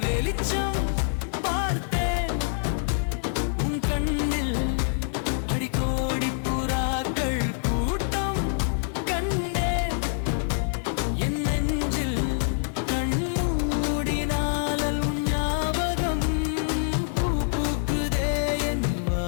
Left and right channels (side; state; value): right; silent; 61 dB below the other